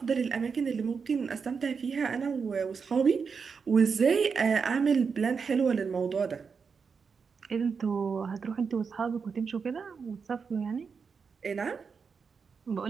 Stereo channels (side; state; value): left; quieter; 5.6 dB